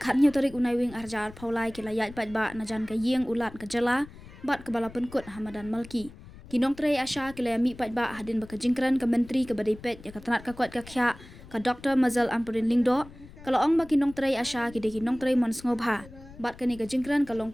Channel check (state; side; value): noise; left; rumble, 18 dB below the sound